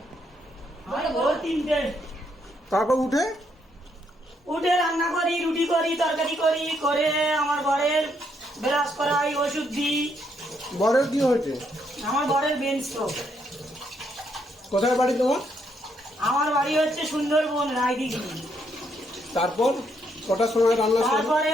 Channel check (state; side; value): normal; both; correlation 0.74